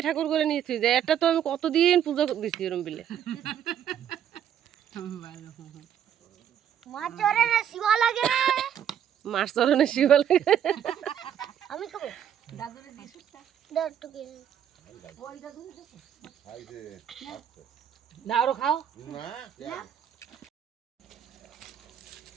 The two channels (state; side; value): quieter; left; 9.6 dB